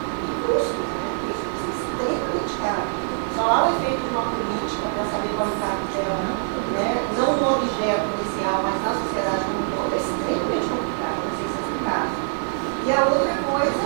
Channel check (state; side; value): silent; left; 63 dB below the other